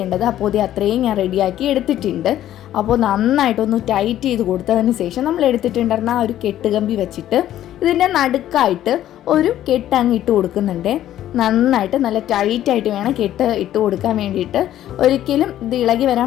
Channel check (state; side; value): quieter; right; 12.4 dB